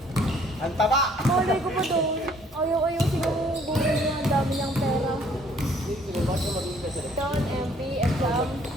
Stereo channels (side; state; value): both; normal; correlation 0.61